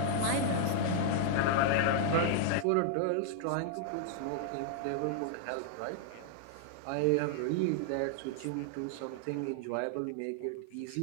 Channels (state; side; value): different; both; correlation -0.01